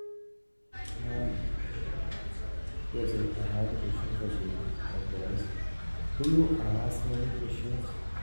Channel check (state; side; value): inverted; both; correlation -1.00